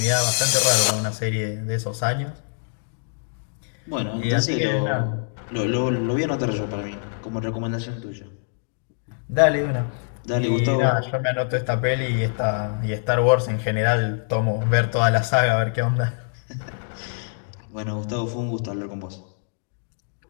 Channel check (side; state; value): right; silent; digital silence